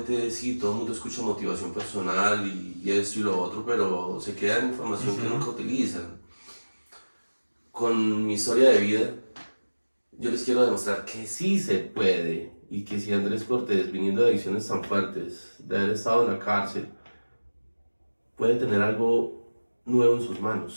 sí, todo el mundo escucha motivación personal y esto y lo otro, pero se queda en información que nunca utilizan. Con mi historia de vida, yo les quiero demostrar que sí se puede y que si Andrés Cortés, viniendo de adicciones tan fuertes, de haber estado en la cárcel, puede tener algo nuevo en sus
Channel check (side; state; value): both; inverted; correlation -1.00